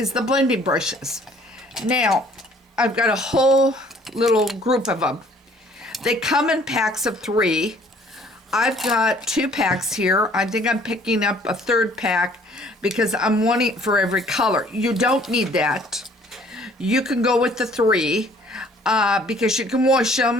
the blending brushes. Now, I've got a whole little group of them. They come in packs of 3. I've got 2 packs here. I think I'm picking up a 3rd pack because I'm wanting it for every color. You don't need that. You can go with the 3 because you can wash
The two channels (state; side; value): normal; both; correlation 0.57